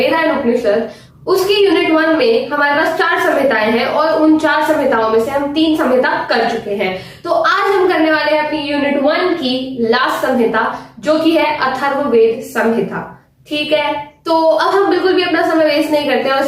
उपनिषद। उसकी यूनिट 1 में हमारे पास 4 संहिताएं हैं और उन 4 संहिताओं में से हम 3 संहिता कर चुके हैं। तो आज हम करने वाले हैं अपनी यूनिट 1 की लास्ट संहिता, जो कि है अथर्ववेद संहिता। ठीक है, तो अब हम बिल्कुल भी अपना समय वेस्ट नहीं करते और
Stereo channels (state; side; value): identical; both; correlation 1.00